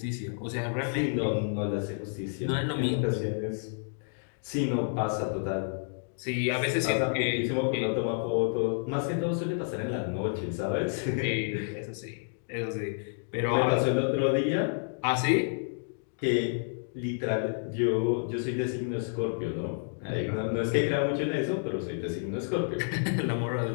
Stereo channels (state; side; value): silent; right; digital silence